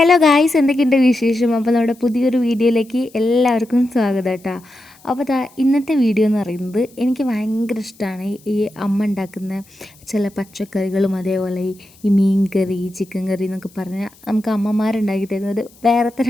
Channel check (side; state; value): left; noise; hiss, 27 dB below the sound